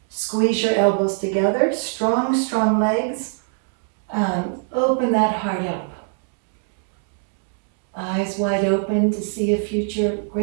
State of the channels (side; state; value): left; silent; digital silence